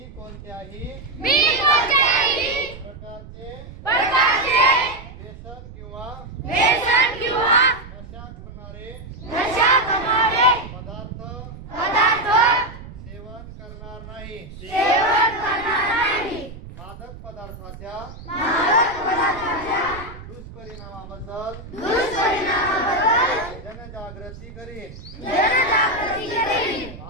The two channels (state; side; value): noise; right; rumble, 15 dB below the sound